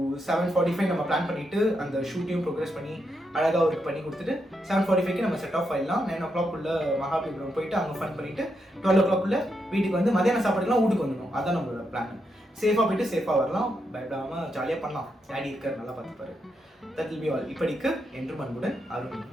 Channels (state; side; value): normal; both; correlation 0.82